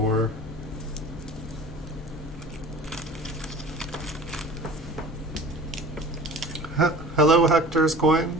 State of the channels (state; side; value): normal; both; correlation 0.42